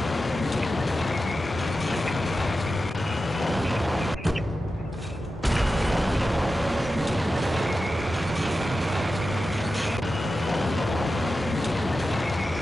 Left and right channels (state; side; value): normal; both; correlation 0.92